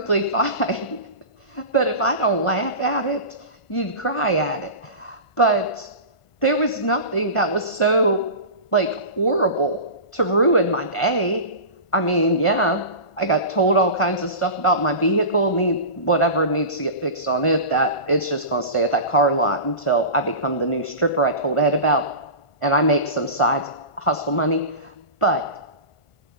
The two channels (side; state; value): right; late; 1.5 ms